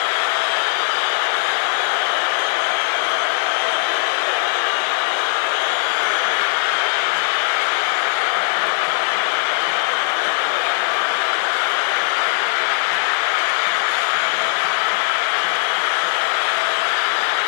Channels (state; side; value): silent; right; 66 dB below the other